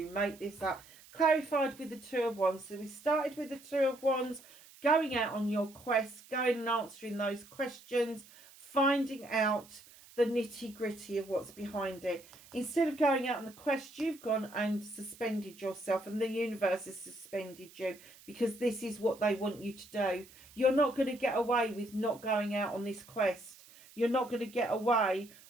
make this up? Clarified with the Two of Wands. So we started with the Two of Wands, going out on your quest, going and answering those questions, finding out the nitty-gritty of what's behind it. Instead of going out on the quest, you've gone and suspended yourself, and the universe has suspended you because this is what they want you to do. You're not going to get away with not going out on this quest. You're not going to get away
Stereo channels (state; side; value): noise; right; hiss, 22 dB below the sound